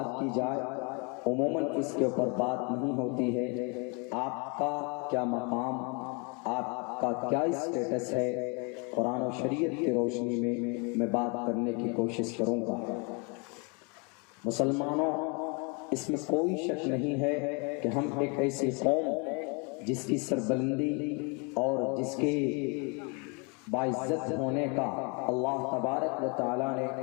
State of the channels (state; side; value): quieter; right; 33.0 dB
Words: کی جائے، عموماً اس کے اوپر بات نہیں ہوتی ہے۔ آپ کا کیا مقام، آپ کا کیا اسٹیٹس ہے، قرآن و شریعت کی روشنی میں بات کرنے کی کوشش کروں گا۔ مسلمانوں، اس میں کوئی شک نہیں ہے کہ ہم ایک ایسی قوم جس کی سربلندی اور جس کے باعزت ہونے کا اللہ تبارک و تعالیٰ نے